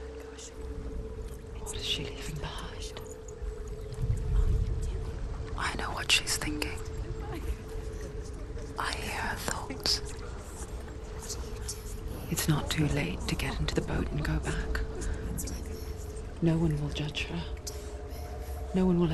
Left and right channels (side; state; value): both; identical; correlation 1.00